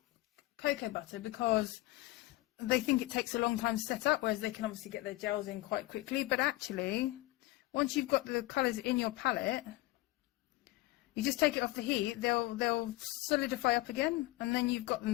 cocoa butter because they think it takes a long time to set up, whereas they can obviously get their gels in quite quickly. But actually, once you've got the colours in your palette, you just take it off the heat, they'll solidify up again, and then you've got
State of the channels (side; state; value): right; quieter; 18.5 dB